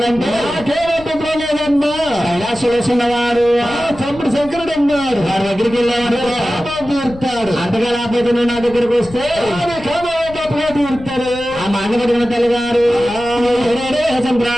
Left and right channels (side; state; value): left; noise; rumble, 17 dB below the sound